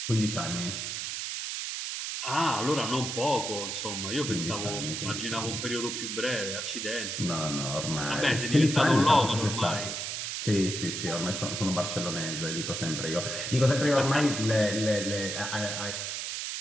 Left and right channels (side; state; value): right; noise; hiss, 4 dB below the sound